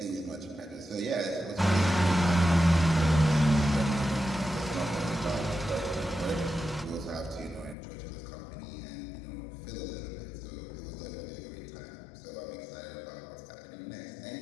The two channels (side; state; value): right; drops out; at 7.8 s